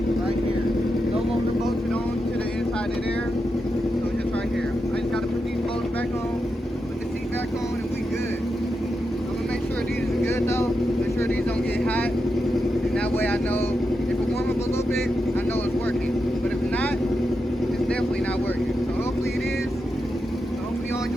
right here. No longer bolted on to the inside of there, so it's just right here. I just gotta put these bolts back on, put the seat back on, and we good. I'm gonna make sure these are good though. Make sure these don't get hot, and that way I know if it warm up a little bit, I know it's working. But if not, it's definitely not working. So hopefully it is. So hopefully y'all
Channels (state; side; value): normal; both; correlation 0.87